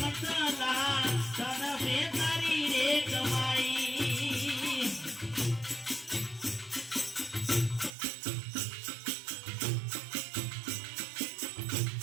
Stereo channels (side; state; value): left; drops out; at 7.9 s